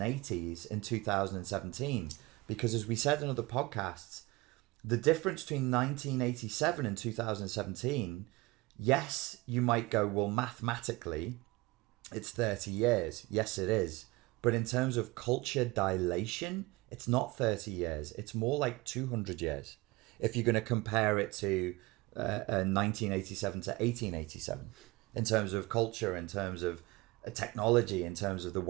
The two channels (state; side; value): quieter; left; 22.3 dB